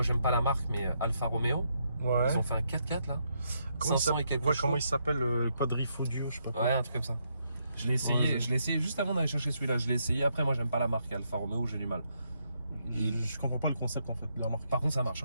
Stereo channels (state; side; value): inverted; both; correlation -0.77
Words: j'aime pas la marque, mais Alfa Romeo. Ouais. Ils ont fait un 4x4, là. Comment 500 et quelques ouais, chose. comment il s'appelle le Quadrifodio, je sais pas quoi. Ouais, un truc comme ça. Je l'ai essayé juste avant d'aller chercher celui-là. Je l'ai essayé. Après, moi, j'aime pas la marque Alfa Romeo, j'ai du mal. Je comprends pas le concept en fait de la marque. Par contre, ça